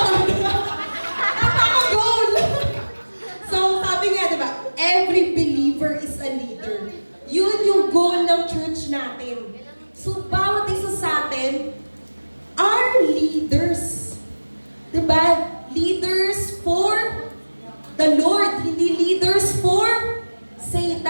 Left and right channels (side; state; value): both; inverted; correlation -1.00